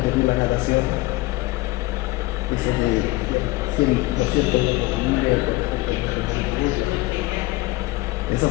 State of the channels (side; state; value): right; quieter; 20.5 dB